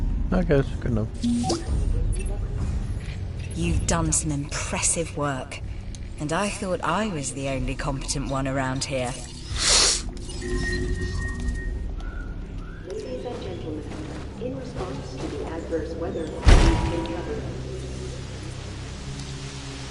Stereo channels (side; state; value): both; identical; correlation 1.00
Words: I guess, good enough. You've done some impressive work, and I thought I was the only competent one around here. Ladies and gentlemen, in response to the adverse weather, we've been covered.